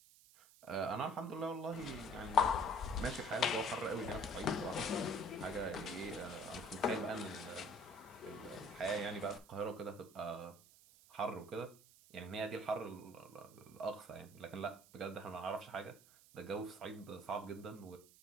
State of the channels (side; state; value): right; noise; hiss, 23 dB below the sound